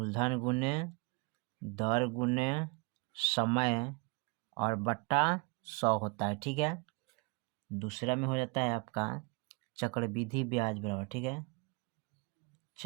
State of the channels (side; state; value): left; quieter; 30.4 dB